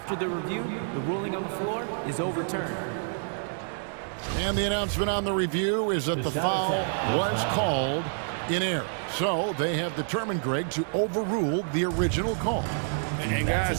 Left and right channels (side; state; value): left; silent; digital silence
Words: the review, the ruling on the floor is overturned. And the announcement on the review is that the foul was called in error. So they have determined, Greg, to overrule the original call. And